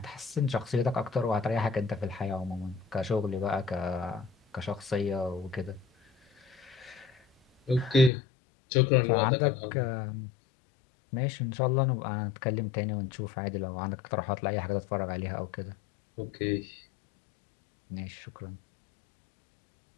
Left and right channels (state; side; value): drops out; right; at 8.1 s